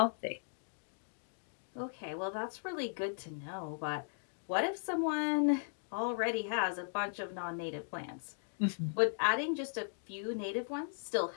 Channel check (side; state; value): right; silent; digital silence